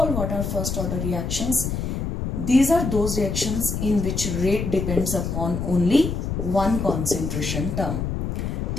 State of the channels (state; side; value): noise; left; rumble, 2 dB below the sound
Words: what are first order reactions? These are those reactions in which rate depends upon only one concentration term.